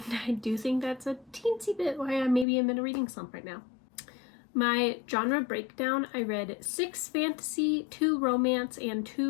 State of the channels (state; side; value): drops out; right; at 2.5 s